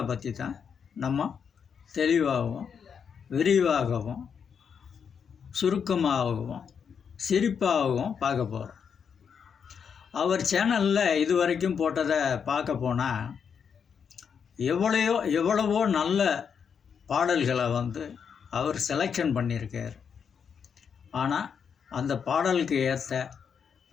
பற்றி தான் நம்ம தெளிவாகவும் விரிவாகவும் சுருக்கமாகவும் சிரிப்பாகவும் பார்க்க போகிறோம். அவர் சேனலில் இது வரைக்கும் போட்டதை பார்க்க போனால் எவ்வளவோ நல்ல பாடல்களை அவர் செலெக்ஷன் பண்ணியிருக்கார். ஆனால் அந்த பாடலுக்கு ஏற்ற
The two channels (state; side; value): quieter; right; 6.9 dB